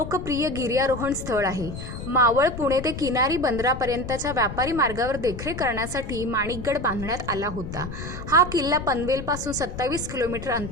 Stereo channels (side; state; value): left; noise; rumble, 9 dB below the sound